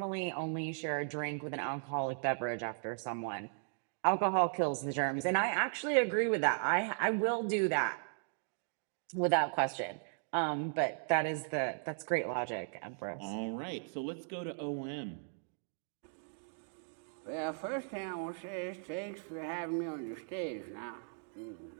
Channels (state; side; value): silent; left; digital silence